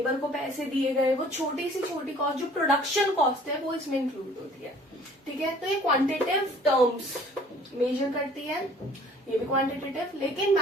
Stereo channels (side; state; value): both; normal; correlation 0.53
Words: को पैसे दिए गए, वो छोटी से छोटी कॉस्ट जो प्रोडक्शन कॉस्ट है वो इसमें इंक्लूड होती है, ठीक है। तो ये क्वांटिटेटिव टर्म्स मेजर करती है, ये भी क्वांटिटेटिव, लेकिन